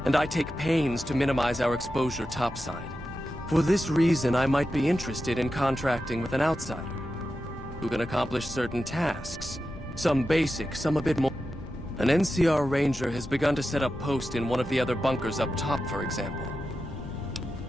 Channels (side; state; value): both; normal; correlation 0.91